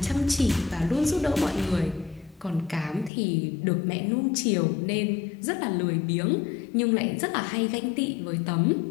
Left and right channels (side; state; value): right; drops out; at 3.1 s